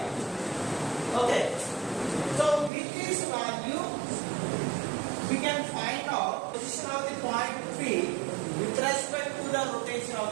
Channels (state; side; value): drops out; left; at 2.7 s